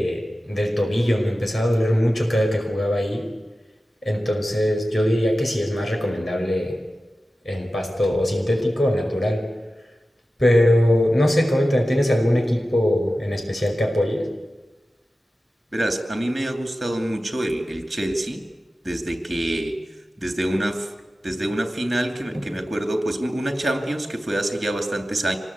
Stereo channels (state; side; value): normal; both; correlation 0.94